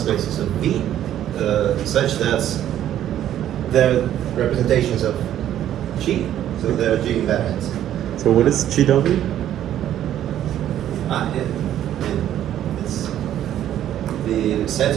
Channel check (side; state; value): left; quieter; 11.5 dB